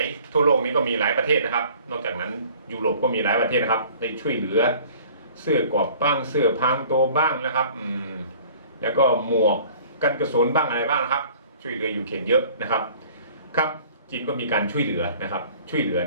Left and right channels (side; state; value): both; inverted; correlation -0.51